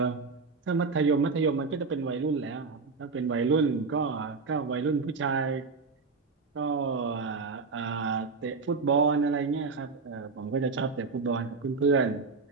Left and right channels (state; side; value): quieter; left; 4.5 dB